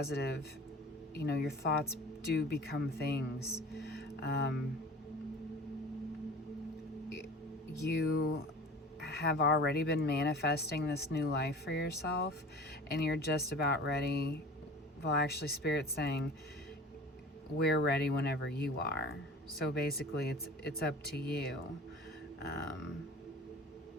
you know, your thoughts do become things. You have already been manifesting this new life for yourself, and you're just about ready. Well, actually, Spirit's saying we're ready whenever you are. So basically, it's up to you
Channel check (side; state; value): both; normal; correlation 0.40